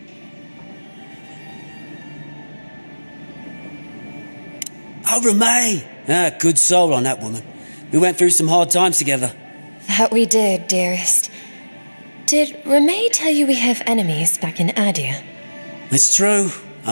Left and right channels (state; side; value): inverted; both; correlation -1.00